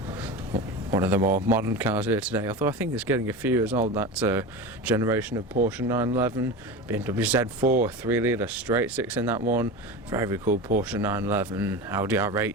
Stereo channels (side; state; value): both; normal; correlation 0.26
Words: One of the more modern cars here today, although I think it's getting a few years old, that generation of Porsche 911, BMW Z4, 3-litre straight 6 in that one, very cool Porsche 911, Audi